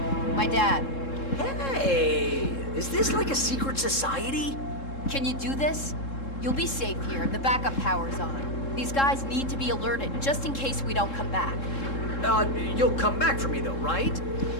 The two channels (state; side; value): late; right; 3.7 ms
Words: My dad. Hey, is this like a secret society? Can you do this? You'll be safe here. The backup power's on. These guys need to be alerted, just in case we don't come back. You'll come back for me though, right?